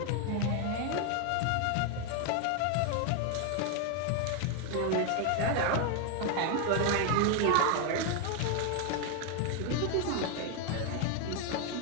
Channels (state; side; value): different; both; correlation 0.01